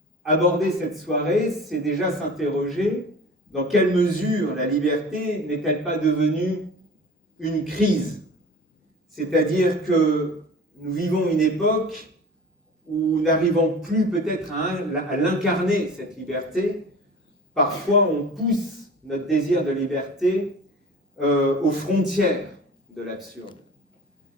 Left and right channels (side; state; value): both; normal; correlation 0.39